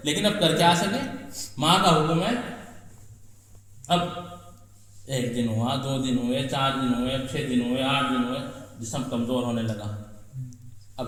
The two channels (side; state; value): both; identical; correlation 1.00